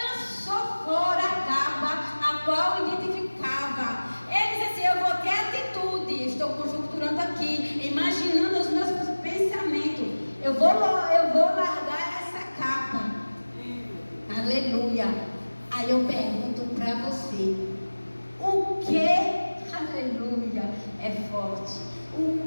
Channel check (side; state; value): both; inverted; correlation -1.00